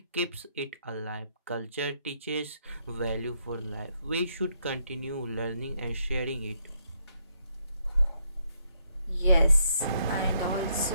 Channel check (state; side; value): inverted; both; correlation -0.74